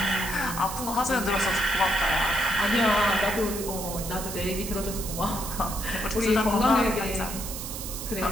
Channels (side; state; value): right; noise; hiss, 8 dB below the sound